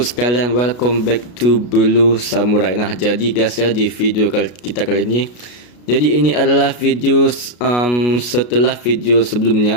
welcome back to Blue Samurai. Nah, jadi guys ya, di video kita kali ini, jadi ini adalah video setelah video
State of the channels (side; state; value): right; late; 33 ms